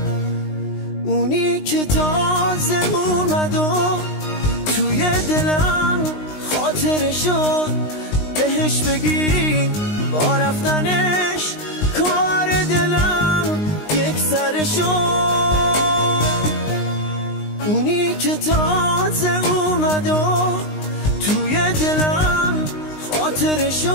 اونی که تازه اومد و توی دلم خاطره شد، بهش بگین با رفتنش کار دلم یک سر شد. اونی که تازه اومد و توی دلم خاطره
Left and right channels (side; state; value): right; late; 19 ms